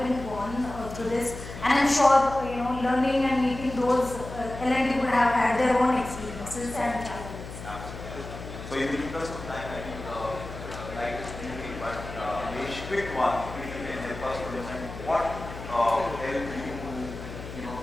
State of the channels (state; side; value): noise; left; hum, 11 dB below the sound